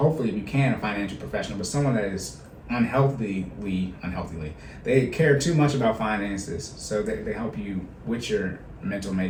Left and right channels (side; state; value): both; identical; correlation 1.00